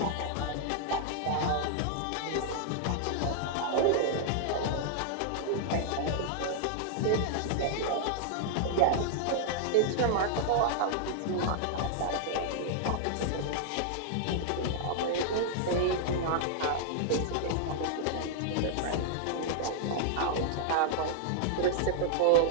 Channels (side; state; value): both; different; correlation -0.01